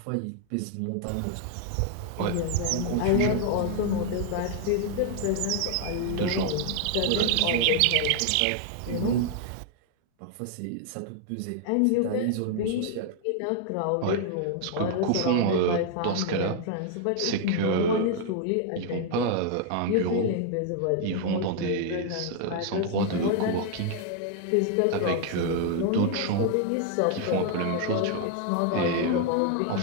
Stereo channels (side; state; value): both; different; correlation 0.00